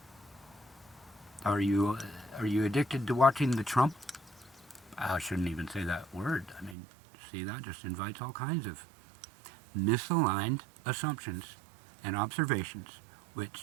Are you addicted to watching the Trump? I shouldn't even say that word. I mean, see, that just invites all kinds of misaligned assumptions and observations,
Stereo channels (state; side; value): drops out; left; at 6.8 s